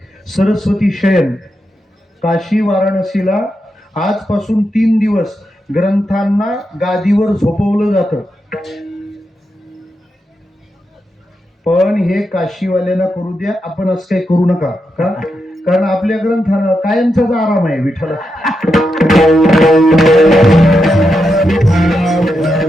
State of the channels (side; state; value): both; normal; correlation 0.85